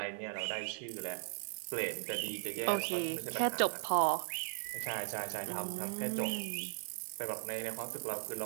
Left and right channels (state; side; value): silent; left; 53 dB below the other